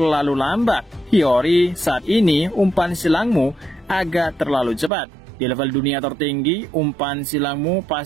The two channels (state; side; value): drops out; left; at 4.9 s